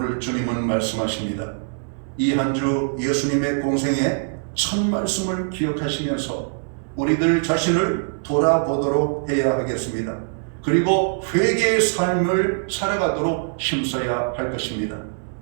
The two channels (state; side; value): silent; left; 64 dB below the other